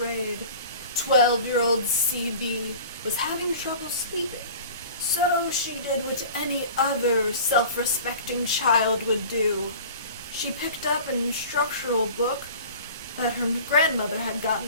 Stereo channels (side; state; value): both; inverted; correlation -0.41